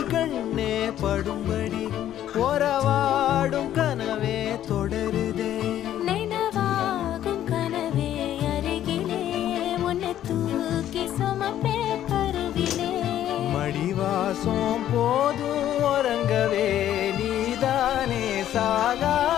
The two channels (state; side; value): quieter; right; 11.7 dB